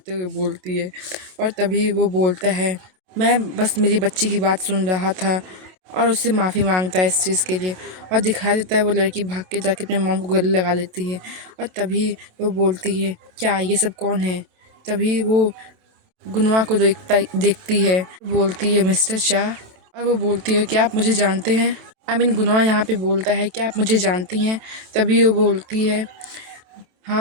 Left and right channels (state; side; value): late; left; 27 ms